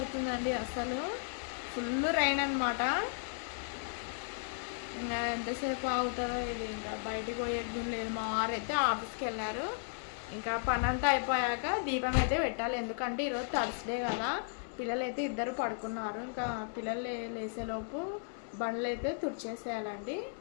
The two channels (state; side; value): silent; right; 54 dB below the other